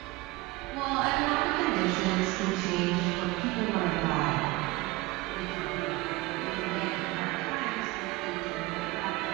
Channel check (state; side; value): quieter; left; 21.2 dB